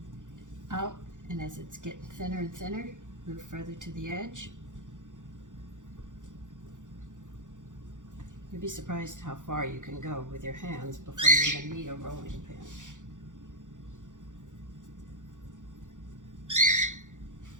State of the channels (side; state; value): left; late; 0.86 ms